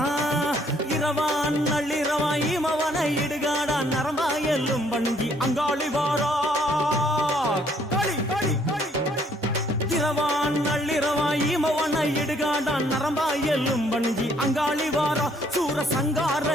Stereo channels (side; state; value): both; normal; correlation 0.65